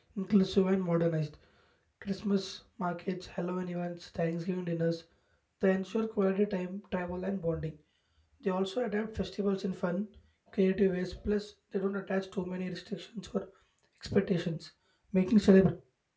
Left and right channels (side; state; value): both; identical; correlation 1.00